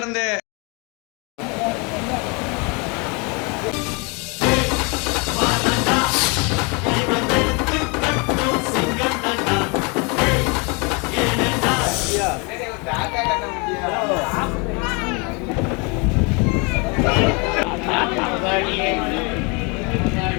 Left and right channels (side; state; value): right; quieter; 31.2 dB